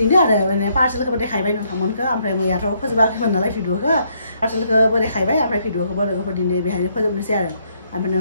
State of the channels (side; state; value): both; inverted; correlation -0.72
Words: आरो माने पार्सेलखौबो देखायबाय नोंथांमोनखौ ओमफ्राय मैयाथ' फोजोबाखैमोन नालाय भिडिअखौ पार्सेलखौबो देखायबाय ओमफ्राय भिडिअखौबो लोगोफोर दिनै बेहायनो फोजोबनोसै आरो ओमफ्राय